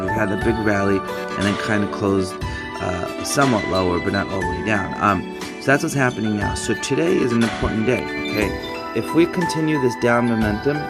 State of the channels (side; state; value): both; identical; correlation 1.00